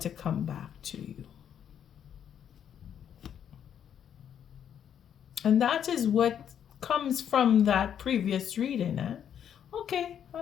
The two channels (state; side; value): quieter; right; 9.0 dB